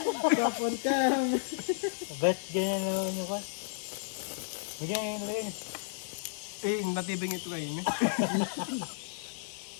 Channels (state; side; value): silent; right; digital silence